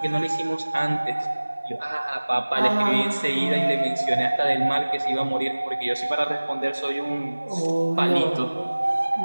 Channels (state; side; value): inverted; both; correlation -1.00